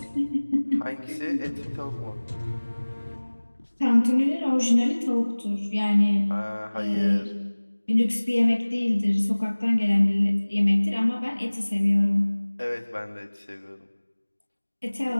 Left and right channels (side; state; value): both; inverted; correlation -1.00